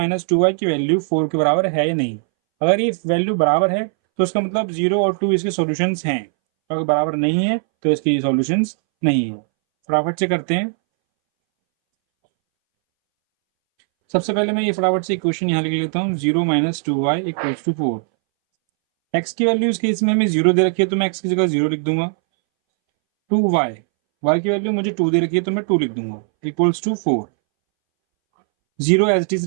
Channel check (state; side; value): silent; left; 64 dB below the other